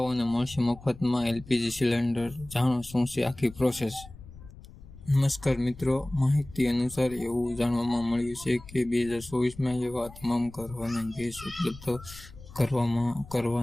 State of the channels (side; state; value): left; noise; rumble, 18 dB below the sound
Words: મળશે મફતમાં એલપીજી સિલિન્ડર. જાણો શું છે આખી પ્રોસેસ. નમસ્કાર મિત્રો, માહિતી અનુસાર એવું જાણવામાં મળ્યું છે કે 2024માં એવા તમામ ઘરોને ગેસ ઉપલબ્ધ